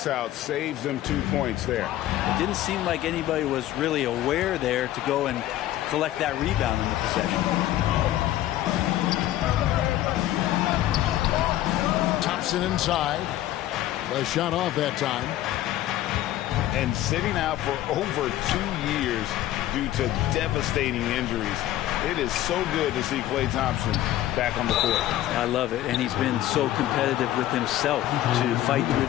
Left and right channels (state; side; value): quieter; right; 13.9 dB